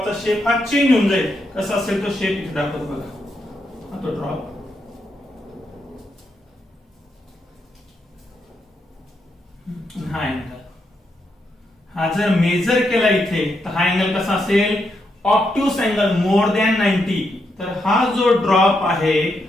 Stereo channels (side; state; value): both; normal; correlation 0.81